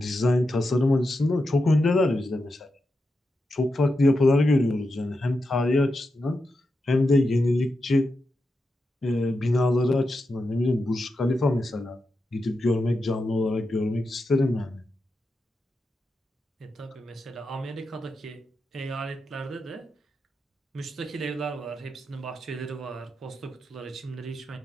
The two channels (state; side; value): normal; both; correlation 0.88